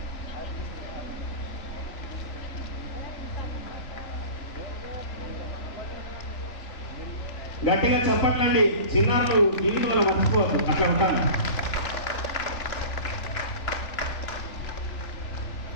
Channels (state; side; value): late; right; 3.4 ms